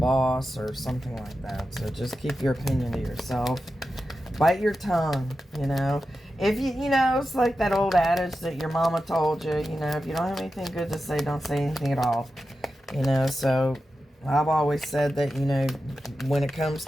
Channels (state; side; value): normal; both; correlation 0.91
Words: or something like that. So just keep your opinion to yourself. Bite your tongue, If it's like that old adage that your mama told you, if you don't have anything good to say, don't say anything at all. So I've always said that, when it comes